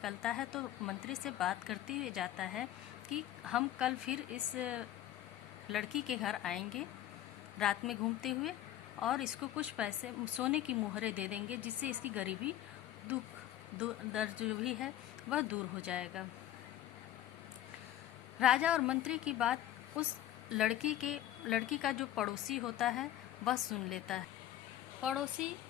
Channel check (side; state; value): right; quieter; 12.6 dB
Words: है तो मंत्री से बात करते हुए जाता है कि हम कल फिर इस लड़की के घर आएंगे रात में घूमते हुए, और इसको कुछ पैसे सोने की मुहरें दे देंगे जिससे इसकी गरीबी दर्द जो भी है वह दूर हो जाएगा। राजा और मंत्री की बात उस लड़की का जो पड़ोसी होता है वह सुन लेता है। पड़ोसी